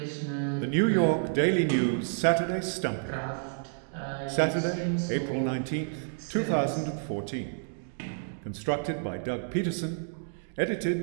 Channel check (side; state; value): left; silent; digital silence